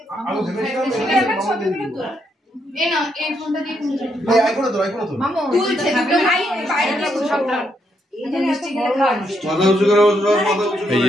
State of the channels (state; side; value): normal; both; correlation 0.77